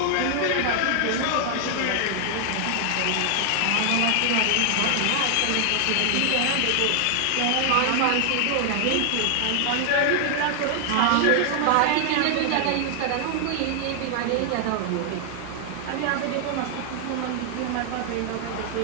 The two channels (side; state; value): both; different; correlation 0.00